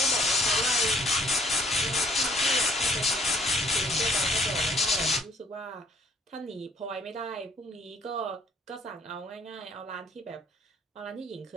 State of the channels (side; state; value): both; normal; correlation 0.61